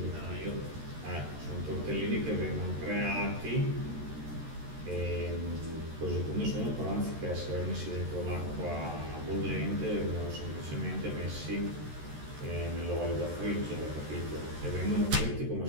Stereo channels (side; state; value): left; late; 13 ms